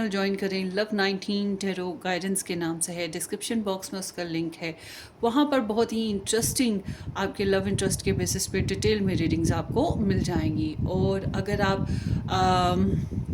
ज्वाइन करें। लव 19 टेरो गाइडेंस के नाम से है, डिस्क्रिप्शन बॉक्स में उसका लिंक है। वहाँ पर बहुत ही इंटरेस्टिंग आपके लव इंटरेस्ट के बेसिस पे डिटेल में रीडिंग्स आपको मिल जाएंगी। और अगर आप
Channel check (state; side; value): identical; both; correlation 1.00